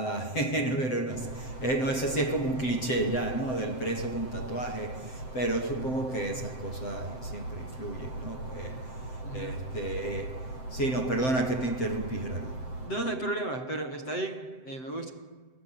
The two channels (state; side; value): late; right; 7.8 ms